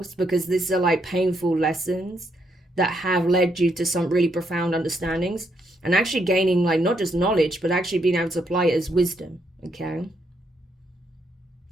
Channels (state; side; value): normal; both; correlation 0.76